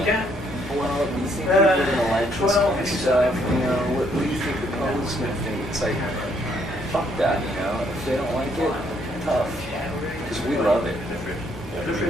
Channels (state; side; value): normal; both; correlation 0.69